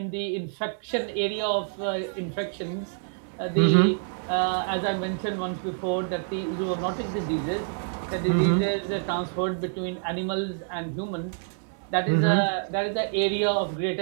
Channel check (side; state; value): left; silent; 60 dB below the other